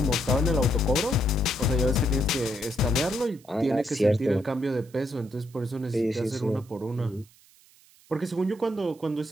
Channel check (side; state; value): right; noise; hiss, 28 dB below the sound